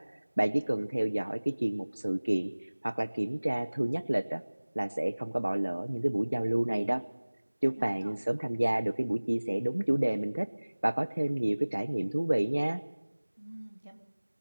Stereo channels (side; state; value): both; inverted; correlation -1.00